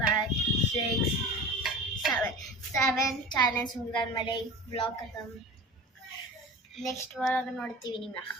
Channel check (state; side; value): normal; both; correlation 0.35